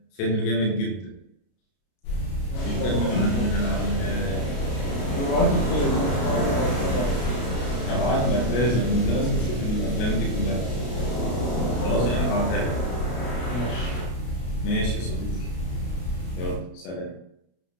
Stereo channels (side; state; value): right; late; 33 ms